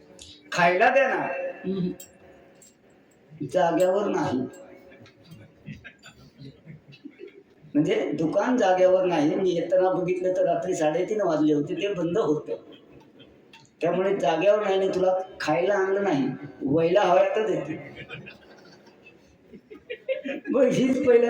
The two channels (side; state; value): both; identical; correlation 1.00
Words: खायला द्या ना जाग्यावर नाही म्हणजे दुकान जाग्यावर नाही मी येताना बघितलं तर रात्री 3:30 वाजले होते ते बंद होतं त्यामुळे जाग्यावर नाही तुला खायला आणलं नाही वयला हव्या तर देते मग हीच